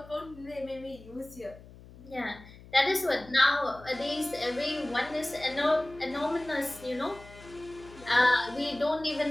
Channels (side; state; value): left; noise; hum, 20 dB below the sound